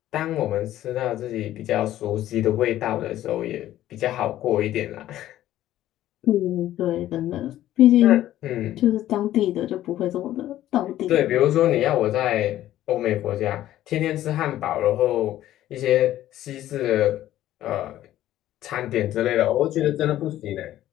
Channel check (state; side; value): quieter; right; 13.4 dB